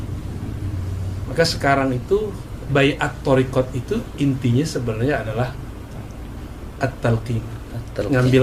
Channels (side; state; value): both; identical; correlation 1.00